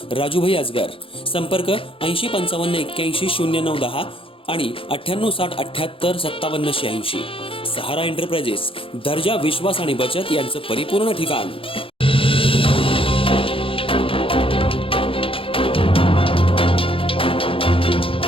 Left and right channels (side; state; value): right; late; 0.26 ms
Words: Rajubhai Ajgar. संपर्क 8055810910 आणि 9860785786. सहारा एंटरप्राइजेस, दर्जा, विश्वास आणि बचत यांचं परिपूर्ण ठिकाण.